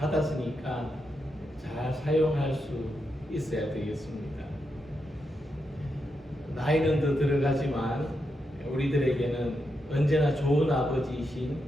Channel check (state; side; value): normal; both; correlation 0.85